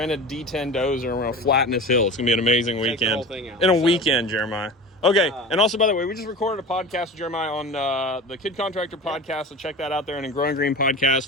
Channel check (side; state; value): both; normal; correlation 0.33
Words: D10 dozer and we're gonna flatten this hill. It's gonna be an amazing weekend. Take the whole thing out. In a weekend, Jeremiah. Okay, and also, by the way, we just recorded a podcast with Jeremiah on the Kid Contractor podcast, so check that out there, and in Growing Green